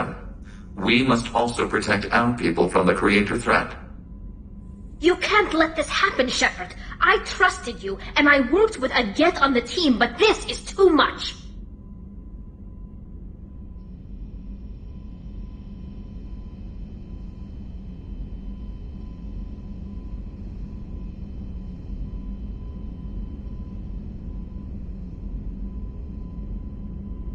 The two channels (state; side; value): identical; both; correlation 1.00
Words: We must also protect our people from the Creator threat. You can't let this happen, Shepard. I trusted you, and I worked with a Geth on the team, but this is too much.